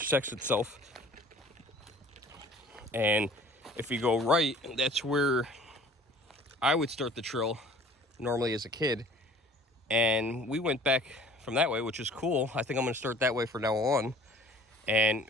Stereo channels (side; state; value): both; normal; correlation 0.50